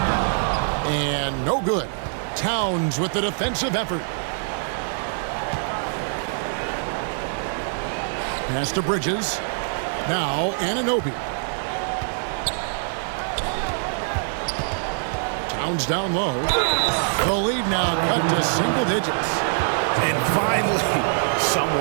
And no good. Towns with the defensive effort. Pass to Bridges. Now Anunoby. Towns down low. The lead now cut to single digits. And finally,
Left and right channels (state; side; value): silent; left; digital silence